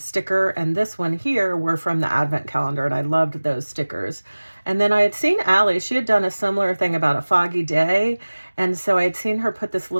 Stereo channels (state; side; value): inverted; both; correlation -1.00